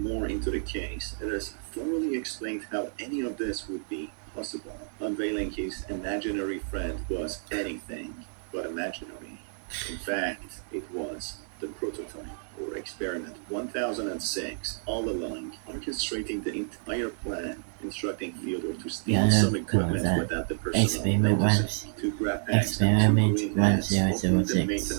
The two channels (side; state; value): left; silent; 58 dB below the other